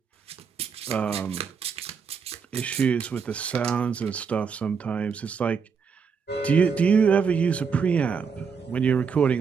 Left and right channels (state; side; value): quieter; left; 6.0 dB